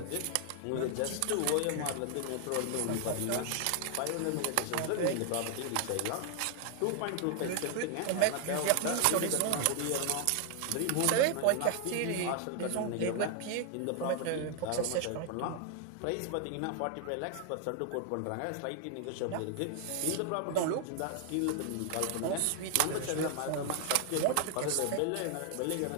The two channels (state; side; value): different; both; correlation 0.00